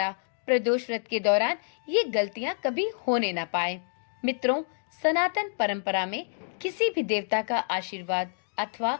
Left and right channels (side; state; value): right; silent; digital silence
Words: प्रदोष व्रत के दौरान ये गलतियां कभी होने न पाए। मित्रों, सनातन परंपरा में किसी भी देवता का आशीर्वाद अथवा